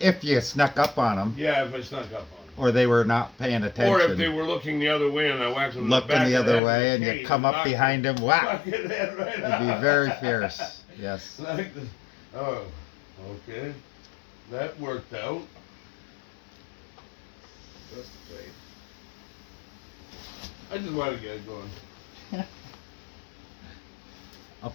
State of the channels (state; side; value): drops out; right; at 6.6 s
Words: you snuck up on them, Yeah, if I snuck up on them. or they were not paying attention. Or if they were looking the other way and I whacked them in the looking back the of other head way with and a you cane come up knocked behind them, whack. Fucking head right It'd be very fierce. Yes. Like this. Oh, okay. That worked out. That's great. I just want to get it going. I'll